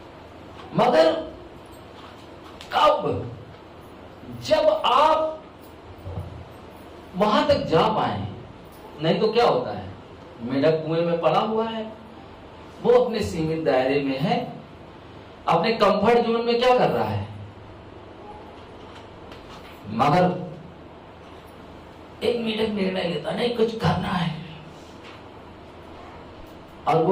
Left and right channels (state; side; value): identical; both; correlation 1.00